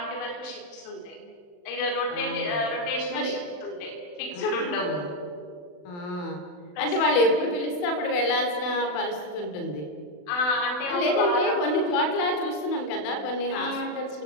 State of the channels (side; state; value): right; late; 40 ms